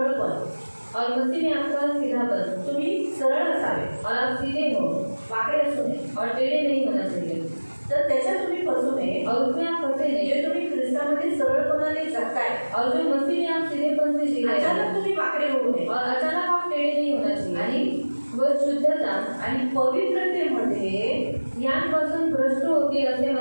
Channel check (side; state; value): both; inverted; correlation -1.00